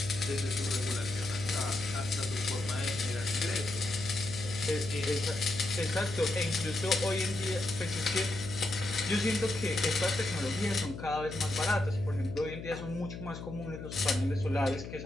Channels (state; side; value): noise; left; hum, 9 dB below the sound